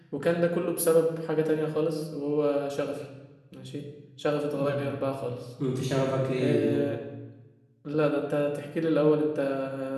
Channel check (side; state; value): both; identical; correlation 1.00